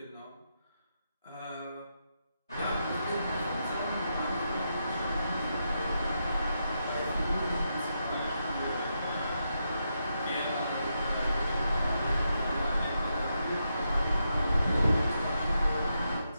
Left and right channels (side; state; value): both; inverted; correlation -0.83